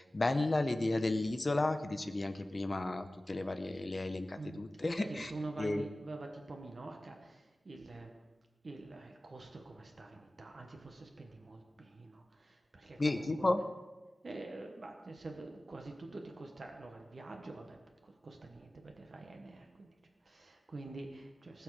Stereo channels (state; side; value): normal; both; correlation 0.97